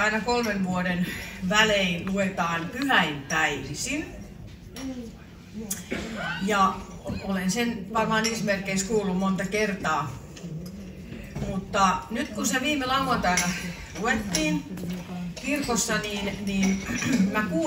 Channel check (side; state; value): both; identical; correlation 1.00